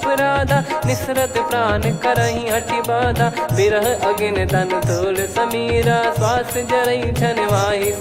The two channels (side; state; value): both; identical; correlation 1.00